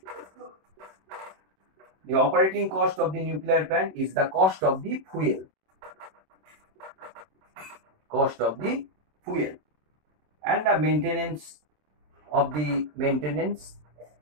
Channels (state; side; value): late; left; 26 ms